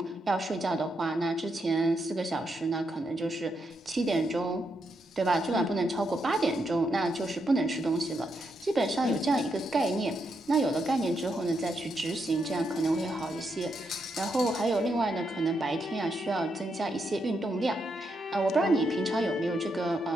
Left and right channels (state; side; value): normal; both; correlation 0.81